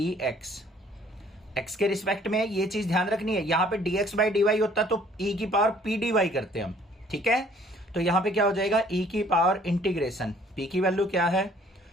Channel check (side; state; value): both; normal; correlation 0.58